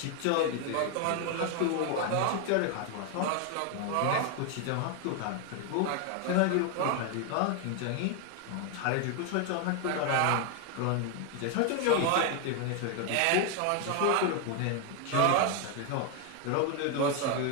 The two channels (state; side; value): different; both; correlation 0.01